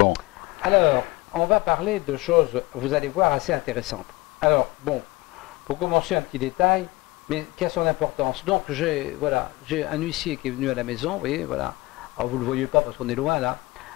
Alors, on va parler de choses, vous allez voir, assez intéressantes. Alors, bon, pour commencer, un petit détail, mais qui a son importance. Donc, j'ai un huissier qui est venu à la maison, vous voyez, voilà. Alors, vous ne le voyez pas parce qu'on est loin, là.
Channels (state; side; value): quieter; right; 21.3 dB